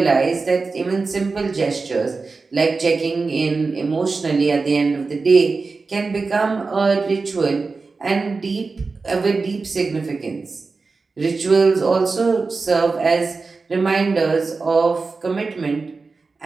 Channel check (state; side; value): quieter; left; 4.2 dB